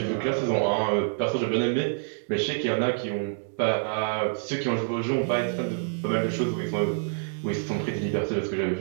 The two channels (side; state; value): left; silent; digital silence